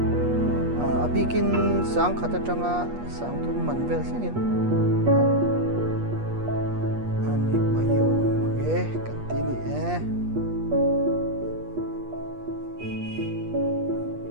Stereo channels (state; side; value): late; left; 8.4 ms